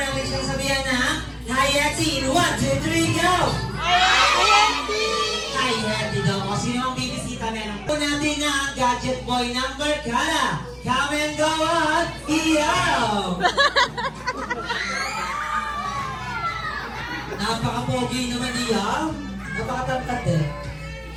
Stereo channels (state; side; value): identical; both; correlation 1.00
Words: natin siyang sabihan na Hi, Hetty! In 1, 2, 3, go! Hi, Hetty daw. O sino ang bibisita meron? Po natin na ang gadget boy number Kala. Come and go on! Iyaw! Napaka-pogi naman iyaw. Napaka-tangkad eh.